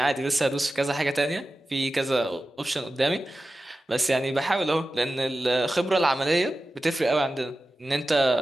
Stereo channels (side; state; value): both; normal; correlation 0.94